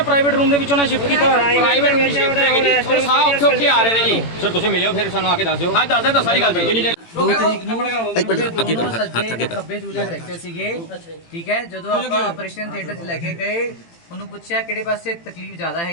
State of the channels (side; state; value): right; late; 18 ms